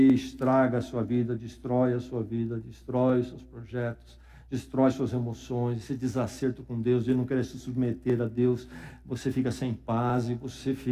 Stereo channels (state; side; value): identical; both; correlation 1.00